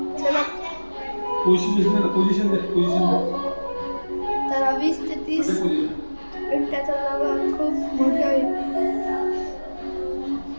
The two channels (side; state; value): both; inverted; correlation -1.00